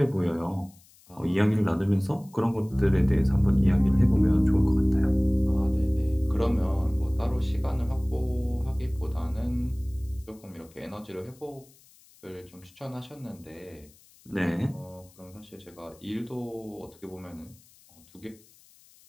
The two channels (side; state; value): left; noise; hiss, 27 dB below the sound